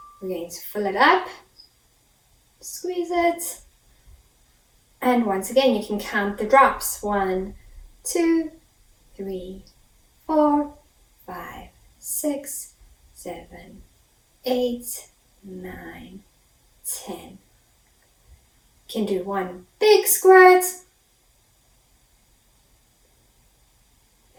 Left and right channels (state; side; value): identical; both; correlation 1.00